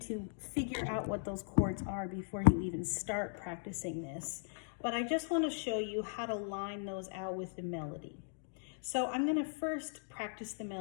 figure out what those chords are before you even start practicing this. But I just want to show you how to line those out with the melody. So I'm going to first practice the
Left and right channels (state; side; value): silent; right; digital silence